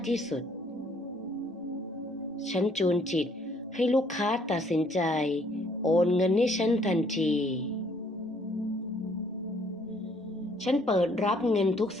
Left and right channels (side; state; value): both; normal; correlation 0.64